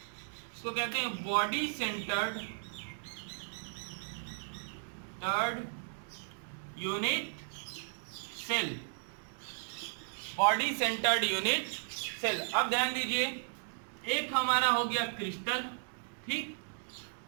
इसको कहते हैं body centred unit cell. Body centred unit cell. अब ध्यान दीजिए, एक हमारा हो गया क्रिस्टल, ठीक।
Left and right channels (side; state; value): left; silent; digital silence